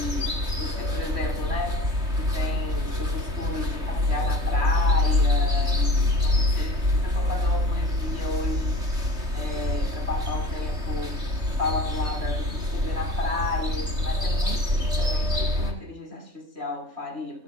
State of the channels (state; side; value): late; left; 3.2 ms